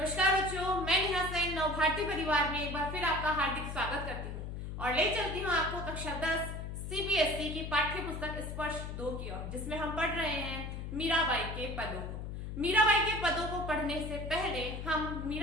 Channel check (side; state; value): left; noise; hum, 6 dB below the sound